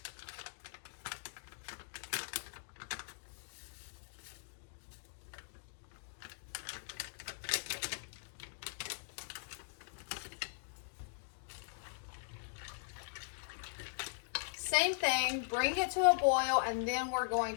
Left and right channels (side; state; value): right; silent; digital silence